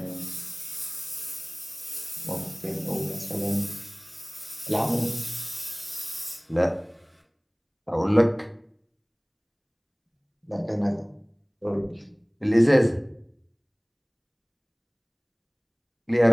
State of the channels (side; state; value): both; identical; correlation 1.00